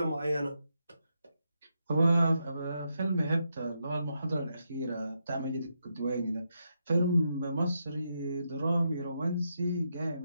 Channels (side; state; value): both; inverted; correlation -0.82